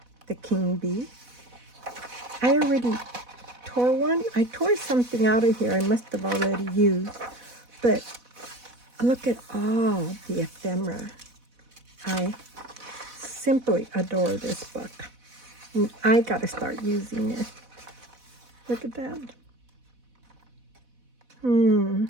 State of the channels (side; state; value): left; late; 4.1 ms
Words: the king bee. I already tore one. I tore something out of here I must have already used. But look at all the ephemera. I simply adore this book. And I got to start using it. Look at that.